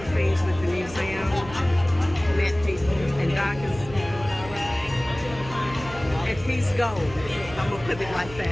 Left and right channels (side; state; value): right; noise; hum, 15 dB below the sound